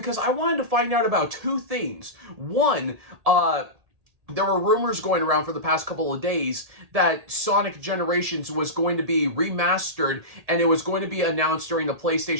I wanted to find out about two things. One, there were rumors going around for the past couple of days that Sonic Generations was going to be remastered, and it was going to be announced during the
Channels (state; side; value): late; left; 1.7 ms